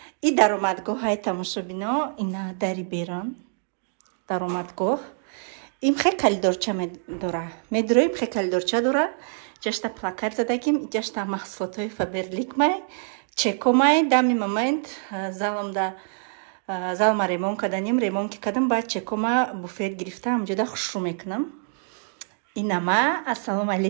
И даромадгоҳаи тамошобино, ина дари берон. Даромадгоҳ. Им хе калидорча медора. Медуроим хе калидорча дора. Ҷашта плакат задагим, ҷашта маҳсулотҳои Фаберлик-май, чекомай, дами момент залма ремон каданим, ремон ки кадам, баъд чекома буфет гирифта, ҳамҷода хушрӯ мекунам. Инама, ассалому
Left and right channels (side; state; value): left; silent; digital silence